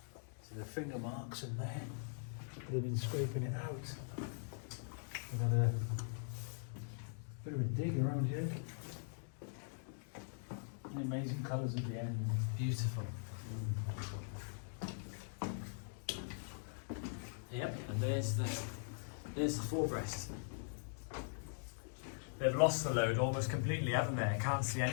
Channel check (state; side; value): silent; right; digital silence